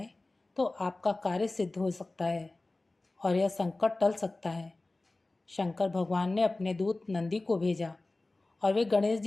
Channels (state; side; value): quieter; right; 3.0 dB